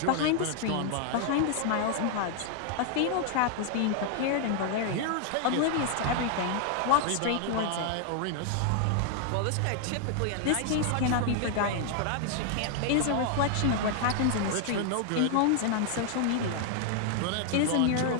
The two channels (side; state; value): both; different; correlation 0.00